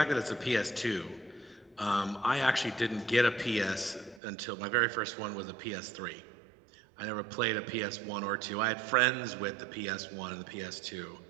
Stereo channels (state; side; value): drops out; left; at 4.2 s